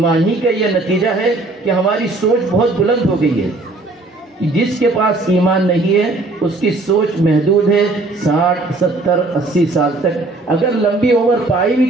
ہی کا یہ نتیجہ ہے کہ ہماری سوچ بہت بلند ہو گئی ہے. جس کے پاس ایمان نہیں ہے اس کی سوچ محدود ہے. 60 70 80 سال تک اگر لمبی عمر پائی بھی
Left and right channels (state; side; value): quieter; left; 3.1 dB